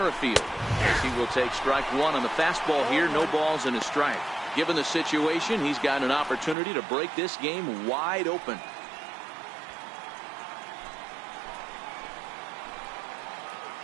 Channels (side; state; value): left; drops out; at 6.6 s